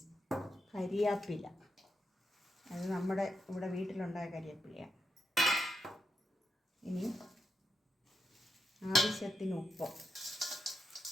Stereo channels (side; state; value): both; normal; correlation 0.85